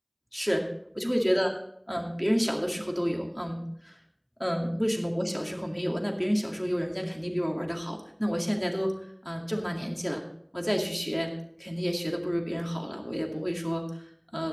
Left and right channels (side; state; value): both; identical; correlation 1.00